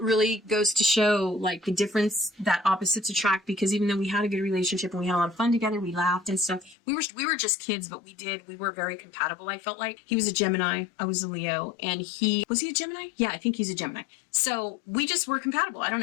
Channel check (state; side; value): drops out; right; at 6.8 s